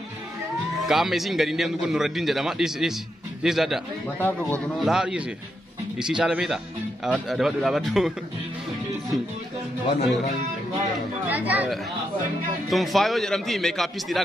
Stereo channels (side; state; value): both; normal; correlation 0.82